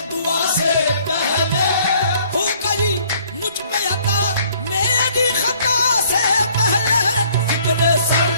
दुआ से पहले, हो गई मुझ पे अता मेरी खता से पहले। जिक्र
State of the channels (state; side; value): inverted; both; correlation -0.59